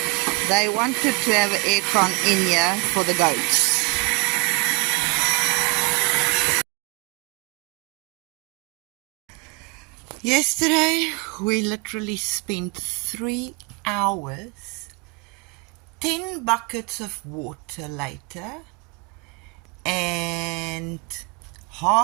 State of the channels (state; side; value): quieter; left; 29.4 dB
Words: They wanted to have an aircon in here for the goats. Yesterday, we literally spent 3 hours, 10 buckets of water later, and